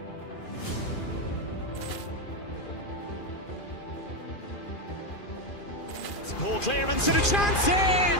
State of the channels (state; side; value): late; right; 2.4 ms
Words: Ball clearance and a chance here,